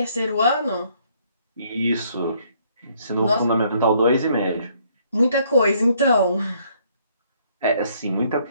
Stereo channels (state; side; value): inverted; both; correlation -0.66